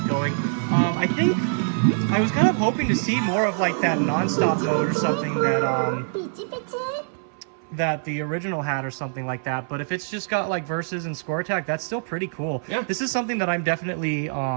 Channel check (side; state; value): left; silent; 59 dB below the other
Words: going. I think I was kind of hoping to see more of like that non-stop mode or something that the original had or something like that. But if it's just got like versus and score attack, that's still pretty cool. Yeah. This is something that I'm definitely